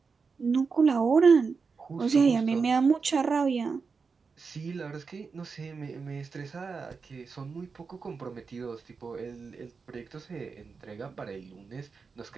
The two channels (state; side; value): quieter; left; 5.0 dB